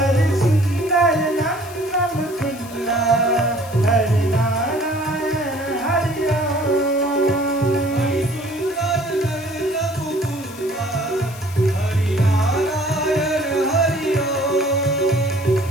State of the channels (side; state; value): left; noise; hiss, 17 dB below the sound